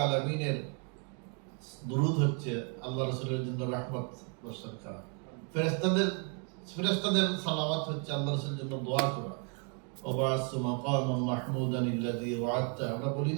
আলামিনের দুরূদ হচ্ছে আল্লাহ রাসূলের জন্য রহমত বর্ষণ করা, ফেরেশতাদের সালাওয়াত হচ্ছে আল্লাহ রাসূলের জন্য দোয়া করা। ওয়াবাসু মাকামান মাহমুদান আল্লাযী ওয়া'আদতা, আমরা বলি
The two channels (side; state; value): left; quieter; 39.6 dB